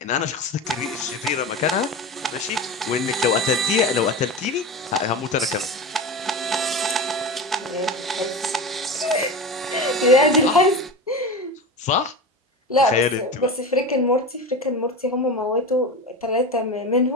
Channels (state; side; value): normal; both; correlation 0.26